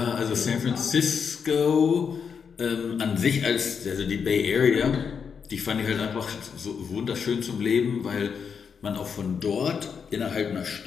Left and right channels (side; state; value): right; quieter; 6.5 dB